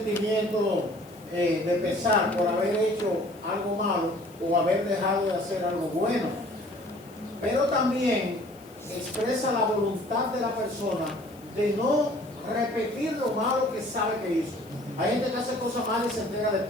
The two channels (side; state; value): left; noise; hiss, 26 dB below the sound